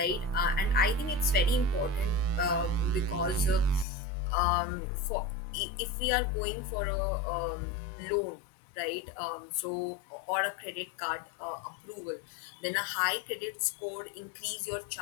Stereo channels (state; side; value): drops out; right; at 3.9 s